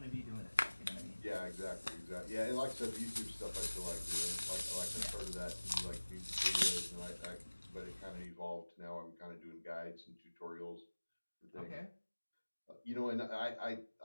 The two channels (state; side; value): inverted; both; correlation -1.00